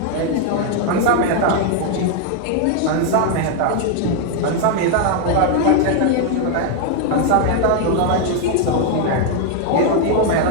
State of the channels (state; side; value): different; both; correlation 0.00